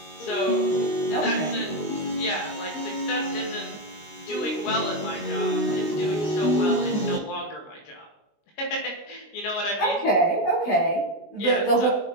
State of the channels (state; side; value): late; right; 19 ms